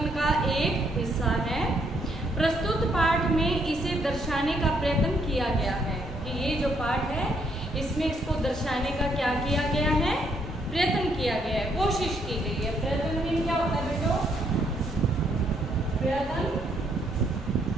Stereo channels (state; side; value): normal; both; correlation 0.72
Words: का एक हिस्सा है। प्रस्तुत पाठ में इसे दर्शाने का प्रयत्न किया गया है कि ये जो पाठ है इसमें इसको दर्शाने का क्या किया गया है? प्रयत्न किया गया है, कोशिश की गई है। प्रयत्न मीन क्या होता है बेटो? प्रयत्न